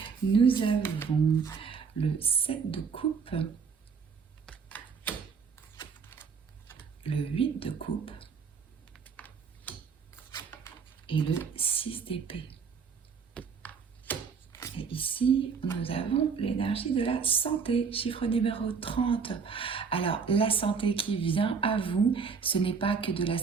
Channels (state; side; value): quieter; left; 5.7 dB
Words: Nous avons le 7 de coupe, le 8 de coupe, et le 6 d'épée. Et ici, nous avons l'énergie de la santé, chiffre numéro 30. Alors, la santé qui vient à vous, ce n'est pas que de la